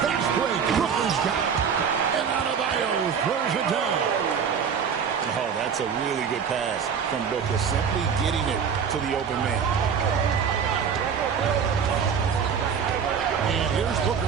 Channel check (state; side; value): quieter; left; 6.9 dB